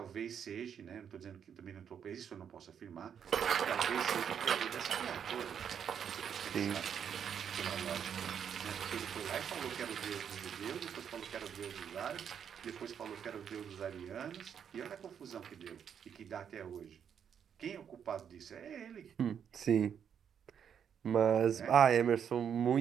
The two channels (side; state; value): left; quieter; 8.1 dB